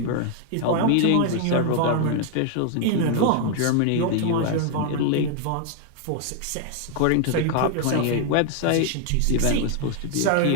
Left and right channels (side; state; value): both; different; correlation 0.00